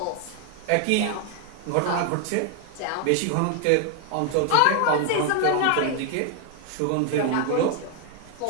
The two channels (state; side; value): different; both; correlation 0.00